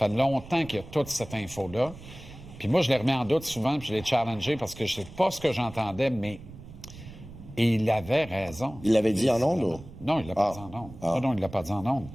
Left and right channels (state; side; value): noise; right; rumble, 16 dB below the sound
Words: fait longtemps qu'il y a toute cette info-là. Puis moi, je l'ai remis en doute souvent, puis je l'ai challengé parce que je sais pas ce que j'entendais, mais il avait raison. Il l'avait dit en ondes? Ou? Non, il l'a pas dit en ondes. Non, il l'a pas dit en ondes.